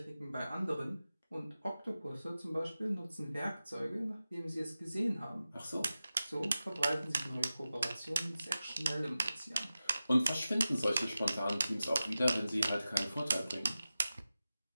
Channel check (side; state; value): both; inverted; correlation -0.94